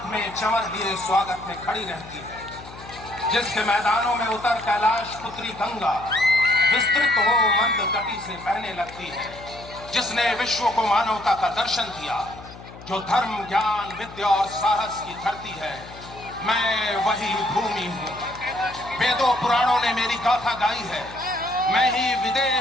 में चंवर लिए स्वागत में खड़ी रहती है, जिसके मैदानों में उतर कैलाश पुत्री गंगा विस्तृत हो मंद गति से बहने लगती है, जिसने विश्व को मानवता का दर्शन दिया, जो धर्म ज्ञान विद्या और साहस की धरती है। मैं वही भूमि हूँ। वेदों पुराणों ने मेरी गाथा गाई है। मैं ही विदेह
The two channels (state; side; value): noise; left; hum, 17 dB below the sound